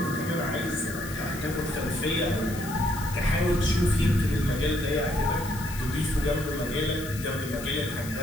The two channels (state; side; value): noise; left; hiss, 13 dB below the sound